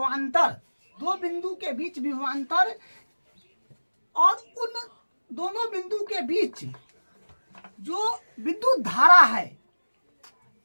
और उन दोनों बिंदु के बीच जो विद्युत धारा है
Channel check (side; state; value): both; inverted; correlation -1.00